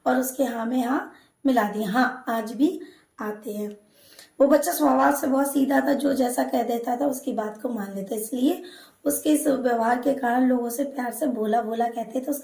और उसके हाँ में हाँ मिला दिया, हाँ आज भी आते हैं। वो बच्चा स्वभाव से बहुत सीधा था, जो जैसा कह देता था उसकी बात को मान लेता, इसलिए उसके इस व्यवहार के कारण लोग उसे प्यार से भोला भोला कहते थे।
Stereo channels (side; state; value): both; identical; correlation 1.00